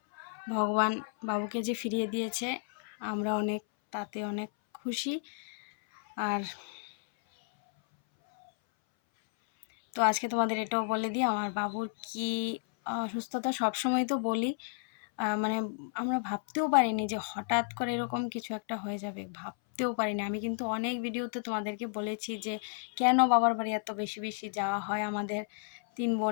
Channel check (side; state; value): right; silent; 56 dB below the other